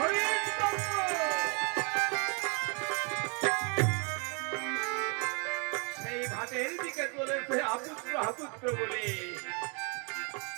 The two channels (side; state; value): left; quieter; 34.8 dB